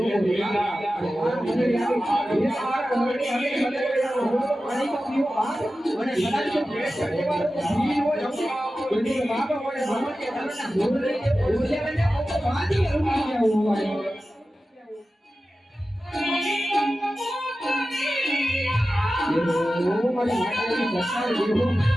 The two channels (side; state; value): both; normal; correlation 0.94